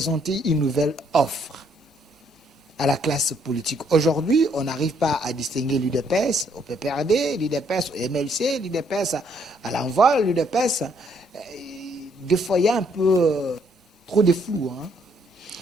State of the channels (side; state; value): both; normal; correlation 0.69